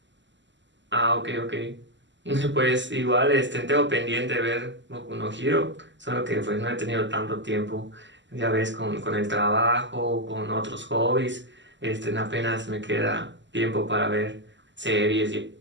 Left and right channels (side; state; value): left; late; 0.53 ms